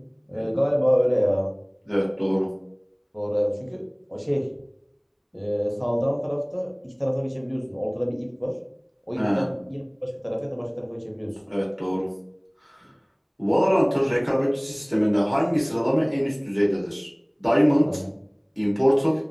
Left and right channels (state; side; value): identical; both; correlation 1.00